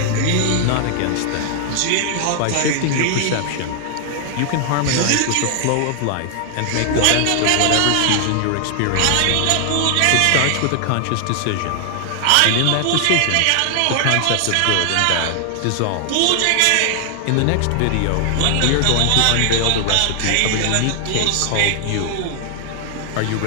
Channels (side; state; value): both; different; correlation 0.00